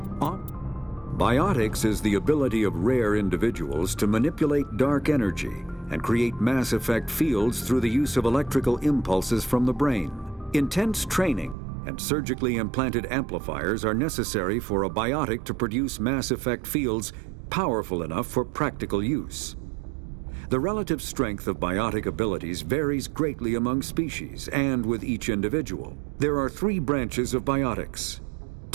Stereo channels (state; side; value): drops out; left; at 11.6 s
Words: is the ability of rare individuals to manipulate dark energy and create mass effect fields through the use of electrical impulses from the brain. Intense training and surgically implanted amplifiers are necessary for a biotic to produce mass effect fields powerful enough for practical use. The relative strength of biotic abilities varies greatly among species and with each individual. There are 3 branches of biotics.